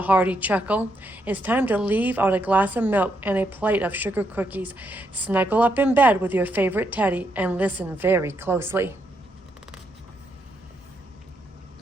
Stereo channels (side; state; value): both; normal; correlation 0.78